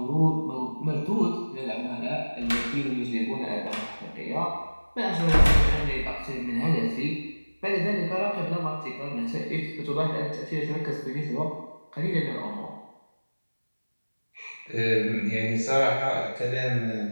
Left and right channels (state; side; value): inverted; both; correlation -1.00